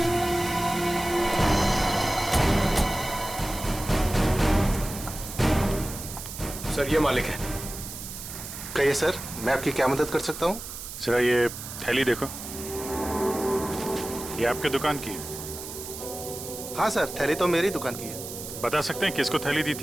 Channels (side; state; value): right; noise; hiss, 10 dB below the sound